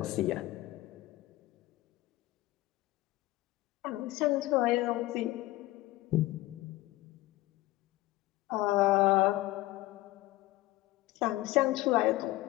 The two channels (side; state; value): right; quieter; 18.1 dB